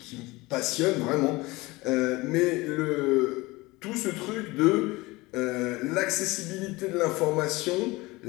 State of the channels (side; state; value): right; quieter; 21.8 dB